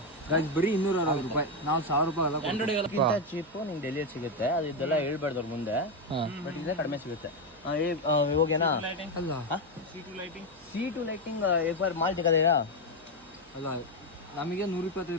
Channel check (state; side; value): noise; right; hum, 27 dB below the sound